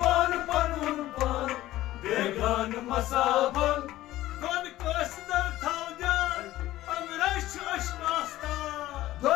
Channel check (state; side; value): quieter; right; 15.5 dB